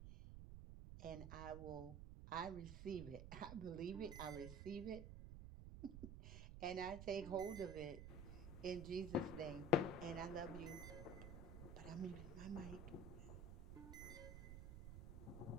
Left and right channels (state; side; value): noise; right; rumble, 8 dB below the sound